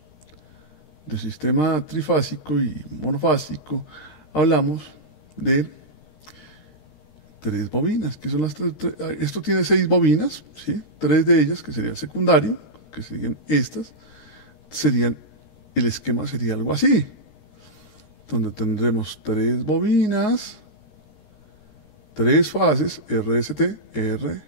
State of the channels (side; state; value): right; late; 13 ms